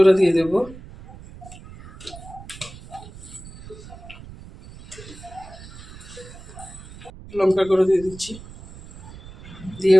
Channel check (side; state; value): right; noise; rumble, 16 dB below the sound